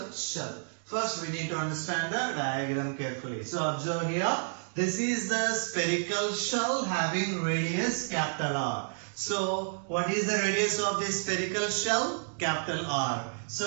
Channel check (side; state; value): left; silent; digital silence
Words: shell. First we need to understand the diagram carefully. So observe here. This is the spherical shell having radius capital R. So what is the radius of this spherical shell? Capital R.